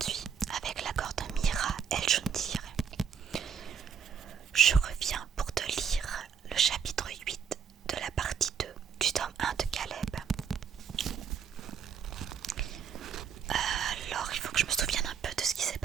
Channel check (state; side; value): quieter; left; 7.2 dB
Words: avec l'accord de Mira El Joundir, je reviens pour te lire le chapitre 8 de la partie 2 du tome 1 de Caleb. Alors, il faut que je me souvienne un peu de ce qui s'est